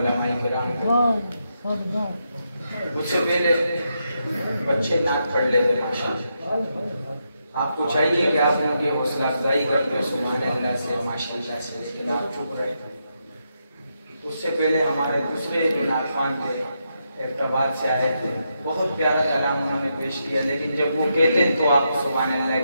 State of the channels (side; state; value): both; inverted; correlation -0.82